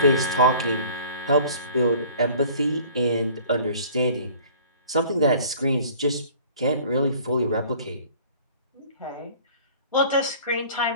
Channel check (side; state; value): both; inverted; correlation -0.49